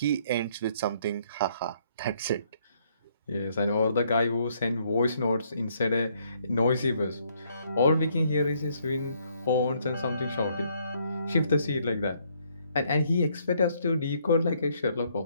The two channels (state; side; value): inverted; both; correlation -0.69